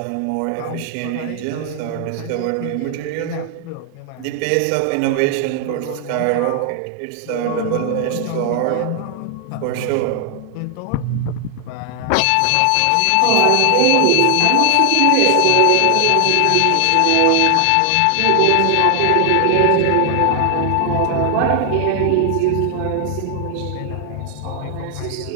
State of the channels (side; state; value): both; different; correlation 0.00